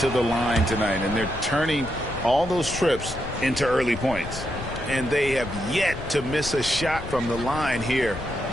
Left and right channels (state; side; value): noise; left; rumble, 12 dB below the sound